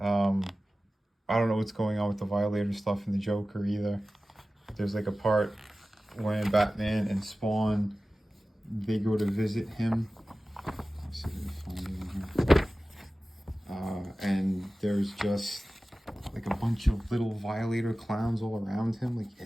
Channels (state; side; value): normal; both; correlation 0.96